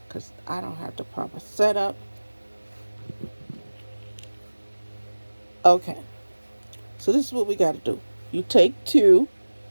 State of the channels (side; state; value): both; inverted; correlation -1.00